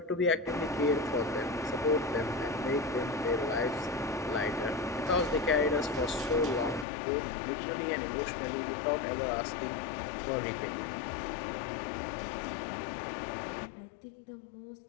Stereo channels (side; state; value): right; drops out; at 6.9 s